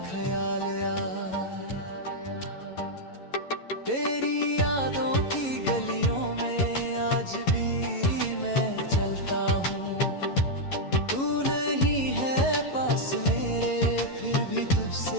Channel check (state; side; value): late; right; 11 ms